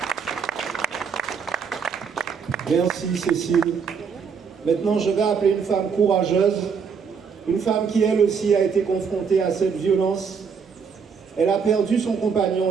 Merci Cécile. Maintenant, je vais appeler une femme courageuse, une femme qui elle aussi a été confrontée à cette violence. Elle a perdu son compagnon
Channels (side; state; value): left; quieter; 6.1 dB